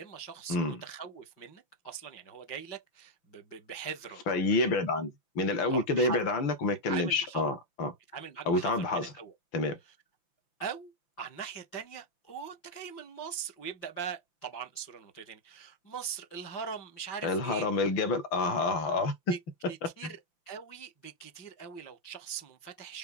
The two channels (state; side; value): late; right; 5.9 ms